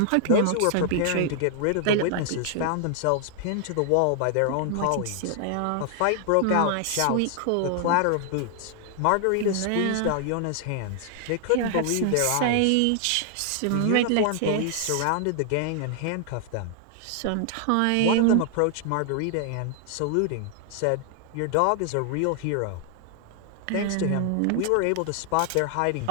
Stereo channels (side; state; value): both; different; correlation 0.00